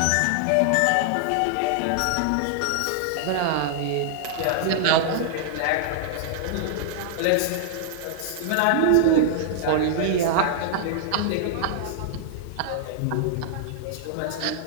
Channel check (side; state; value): both; different; correlation -0.01